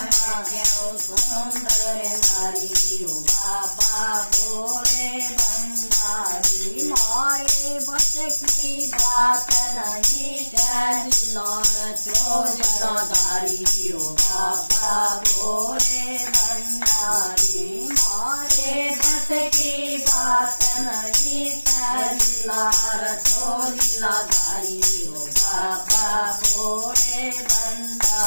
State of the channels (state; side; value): inverted; both; correlation -1.00